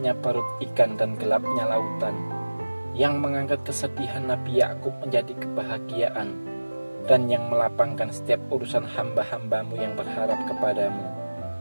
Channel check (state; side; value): inverted; both; correlation -1.00